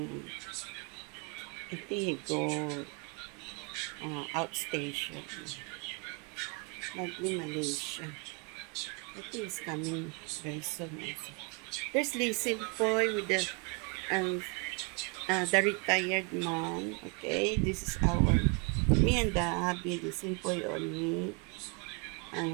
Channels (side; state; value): left; quieter; 33.8 dB